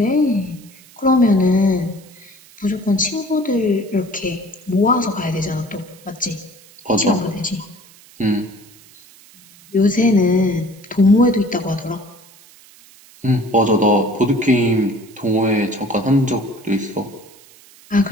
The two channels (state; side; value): noise; right; hiss, 25 dB below the sound